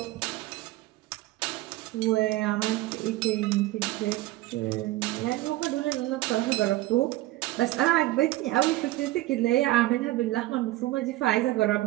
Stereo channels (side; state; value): left; quieter; 17.3 dB